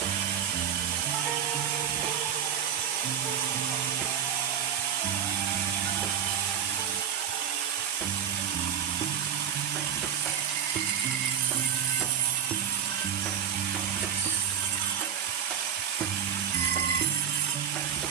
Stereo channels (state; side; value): quieter; left; 8.6 dB